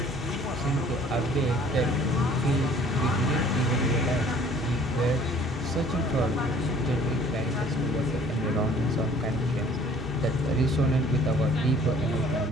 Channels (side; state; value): both; normal; correlation 0.54